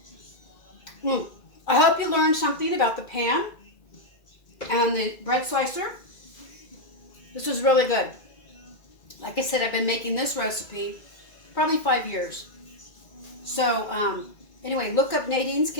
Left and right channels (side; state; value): right; late; 2.2 ms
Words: I hope you learned something about the pan and the bread slicer. This is really good. Like I said, I've been making this recipe probably 5 years. So anyway, look up Nadine's